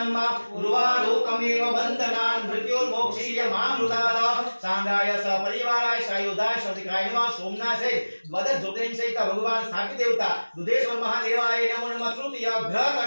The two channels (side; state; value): both; inverted; correlation -1.00